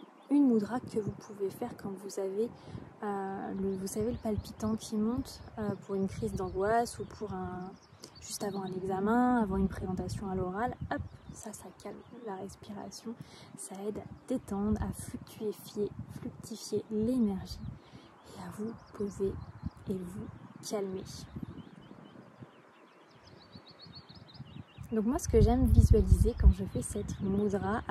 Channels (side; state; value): both; identical; correlation 1.00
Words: une mudra que vous pouvez faire quand vous avez vous savez le palpitant qui monte pour une crise d'angoisse ou pour juste avant un examen, avant une présentation à l'oral. Hop, ça calme la respiration, ça aide à détendre, à fluctifier l'énergie et à vous poser et vous calmer. Donc moi ce que j'aime visualiser quand je fais cette mudra,